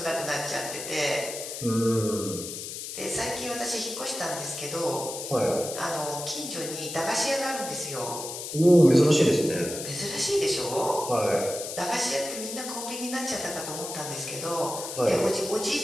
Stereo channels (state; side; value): noise; left; hiss, 7 dB below the sound